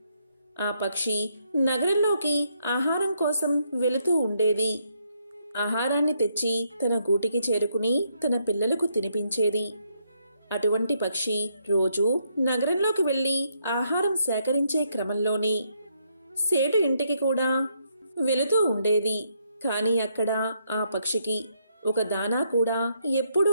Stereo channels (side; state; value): both; inverted; correlation -0.75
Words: ఆ పక్షి నగరంలోకి ఆహారం కోసం వెళుతూ ఉండేది. ఆహారాన్ని తెచ్చి తన గూటికి చేరుకుని తన పిల్లలకు తినిపించేది. అటువంటి పక్షి రోజూ నగరంలోకి వెళ్లి ఆహారం సేకరించే క్రమంలోనే సేటు ఇంటికి కూడా వెళుతూ ఉండేది. కాని అక్కడ ఆ పక్షికి ఒక దానా కూడా ఎప్పుడూ